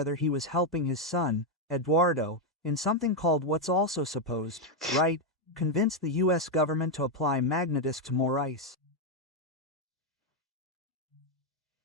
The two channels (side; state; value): both; normal; correlation 0.03